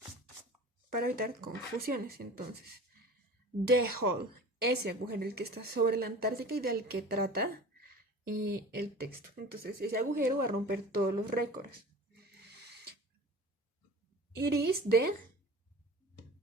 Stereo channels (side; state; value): both; normal; correlation 0.39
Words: para evitar confusiones. Entonces, the hole, ese agujero, el que está sobre la Antártica y del que trata el texto. Entonces, ese agujero va a romper todos los récords. It is the,